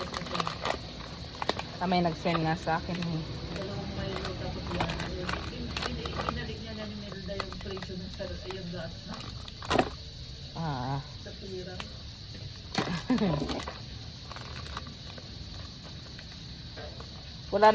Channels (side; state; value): both; identical; correlation 1.00